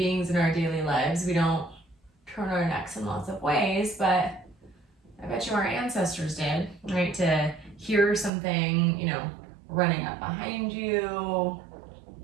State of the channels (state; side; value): drops out; left; at 8.3 s